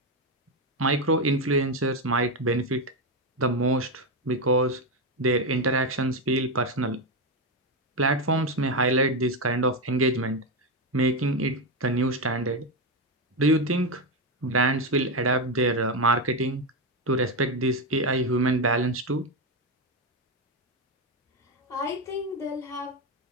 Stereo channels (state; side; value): normal; both; correlation 0.09